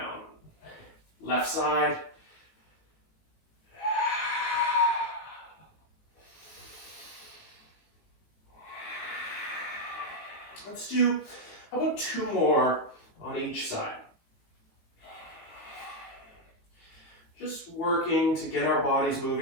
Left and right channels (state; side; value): late; right; 18 ms